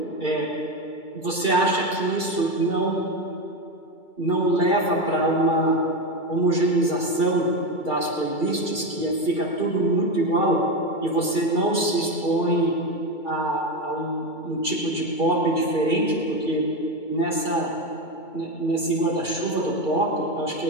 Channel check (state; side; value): late; right; 2.3 ms